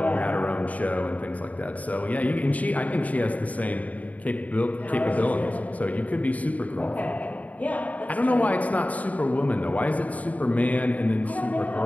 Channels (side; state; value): right; late; 0.071 ms